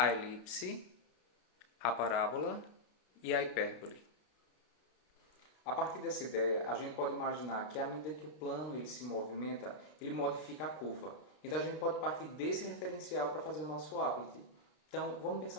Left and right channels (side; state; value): right; late; 33 ms